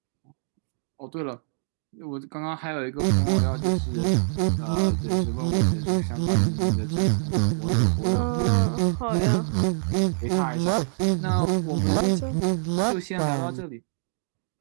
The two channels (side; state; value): left; silent; digital silence